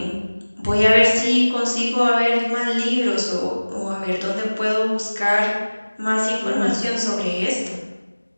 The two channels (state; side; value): inverted; both; correlation -1.00